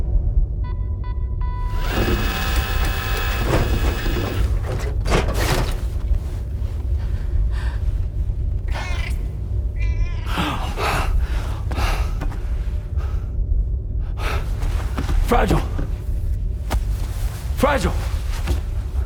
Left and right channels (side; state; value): both; identical; correlation 1.00